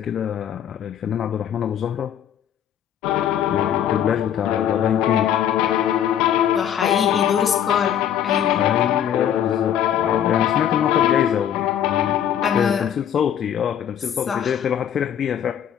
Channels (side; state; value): right; quieter; 9.8 dB